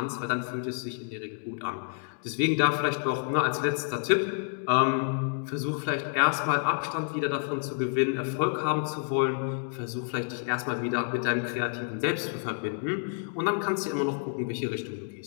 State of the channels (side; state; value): right; silent; 59 dB below the other